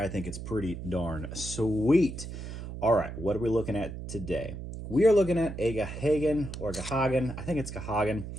think it's pretty darn sweet. All right, what are we looking at today? We are looking at a Gahagan, I think it's Gahagan,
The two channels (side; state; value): right; noise; hum, 9 dB below the sound